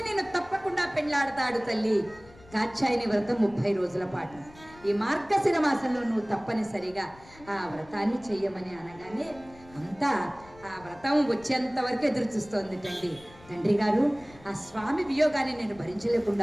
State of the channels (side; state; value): left; noise; rumble, 23 dB below the sound